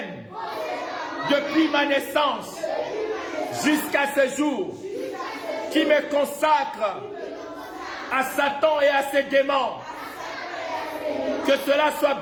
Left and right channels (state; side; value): identical; both; correlation 1.00